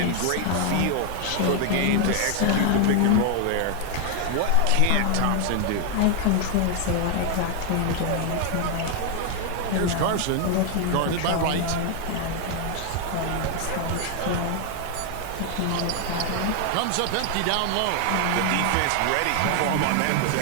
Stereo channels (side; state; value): both; different; correlation 0.00